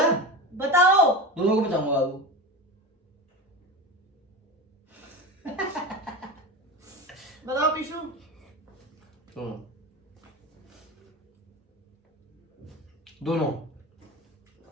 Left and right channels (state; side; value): normal; both; correlation 0.26